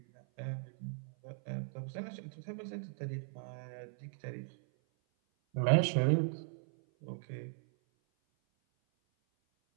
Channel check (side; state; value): left; silent; 52 dB below the other